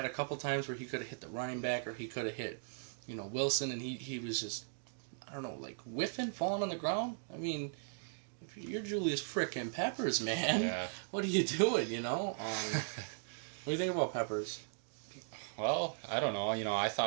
a couple times where he could have hit the running back or he could have hit, Wilson, and he was just, I don't know, like whiffing, falling on the ground. I mean, if you're Julius frickin' Peppers, man, what are you doing, what do you think about Peppers? Well, I don't know. I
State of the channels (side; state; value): left; silent; digital silence